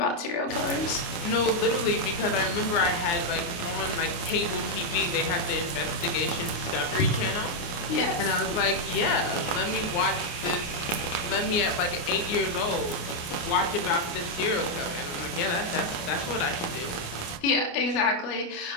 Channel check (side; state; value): right; late; 29 ms